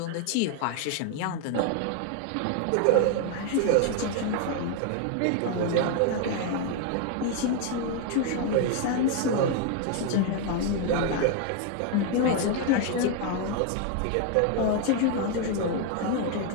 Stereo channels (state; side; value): different; both; correlation 0.00